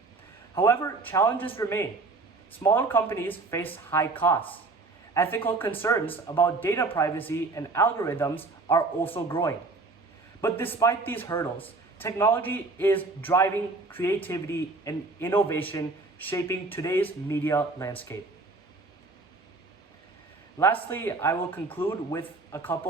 However, challenges remain. Smaller companies face high costs. Ethical concerns about data privacy and algorithms are also growing. But despite these hurdles, technology is driving creativity and innovation, shaping today's media landscape. Lastly, I will conclude with a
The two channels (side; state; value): left; quieter; 3.6 dB